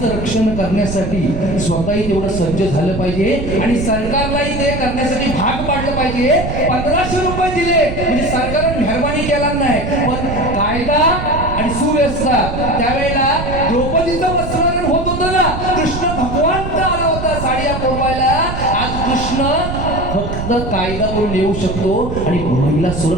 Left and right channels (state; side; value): noise; right; rumble, 5 dB below the sound